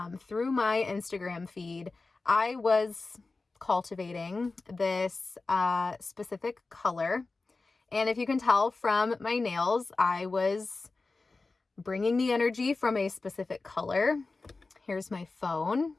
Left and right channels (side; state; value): right; quieter; 3.7 dB